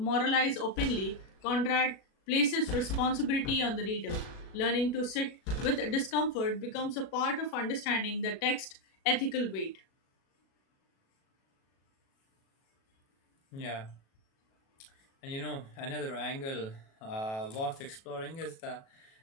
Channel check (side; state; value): right; late; 37 ms